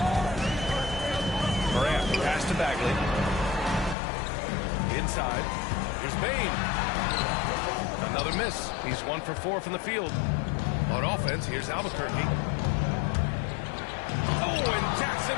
Morant, pass to Bagley. Inside, here's Bane. Another miss. He's 1 for 4 from the field. On offense, here's Albuquerque. Oh, and Jackson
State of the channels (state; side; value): drops out; right; at 4.0 s